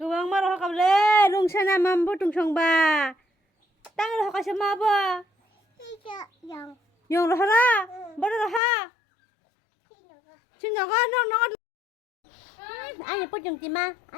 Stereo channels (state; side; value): drops out; right; at 8.6 s